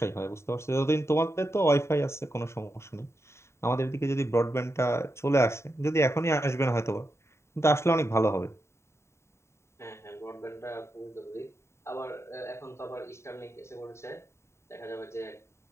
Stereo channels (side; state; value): right; late; 0.13 ms